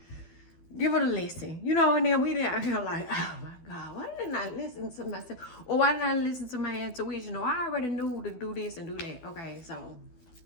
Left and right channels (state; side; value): late; right; 12 ms